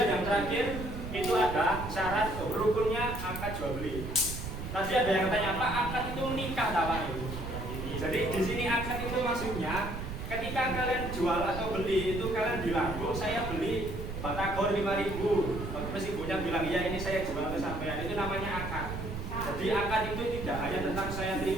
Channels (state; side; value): noise; right; rumble, 7 dB below the sound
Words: yang terakhir itu ada syarat rukunnya akad jual beli. Tadi ada yang tanya apa akad itu menikah apa itu? Jadi di sini akad itu maksudnya ketika kalian jual atau beli itu kalian bilang, bu saya beli batagor 5.000. Terus ibunya bilang iya ini saya jual ke sampean. Itu namanya akad. Jadi akad itu tidak hanya tentang saya